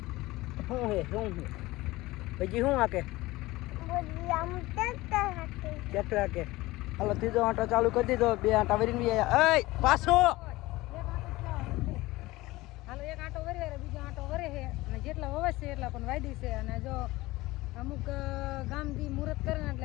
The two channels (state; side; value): quieter; right; 19.4 dB